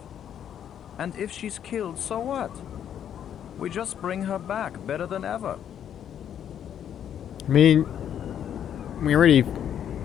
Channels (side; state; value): right; quieter; 9.5 dB